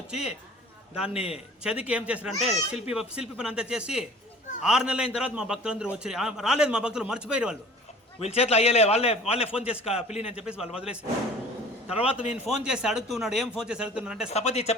దాన్ని చదికి ఏం చేశారంటే శిల్పి పని అంతా చేసి 6 నెలలు అయిన తర్వాత మా భక్తులందరూ వచ్చి రాలేదు, మా భక్తులు మర్చిపోయారు, వీళ్ళ చేతిలో అయ్యలే, వాళ్ళే ఫోన్ చేసి పిల్లిని అని చెప్పేసి వాళ్ళు వదిలేసి తర్వాత నేను ఫోన్ చేసి అడుగుతున్నాడు, ఏం ఫోన్ చేసి అడుగుతున్నాడు అంటే స్థపతి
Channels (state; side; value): normal; both; correlation 0.46